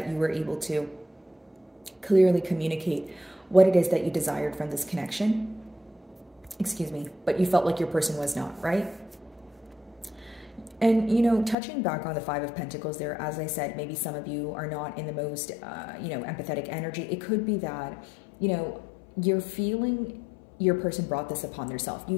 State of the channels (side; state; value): right; drops out; at 11.6 s